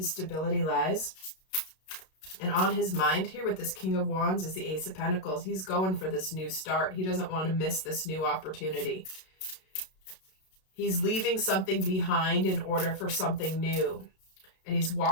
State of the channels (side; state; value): right; late; 32 ms